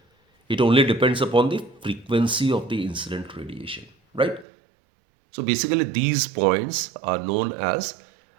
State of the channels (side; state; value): left; drops out; at 4.5 s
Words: It only depends upon the frequency of the incident radiation, right? So basically these points are known as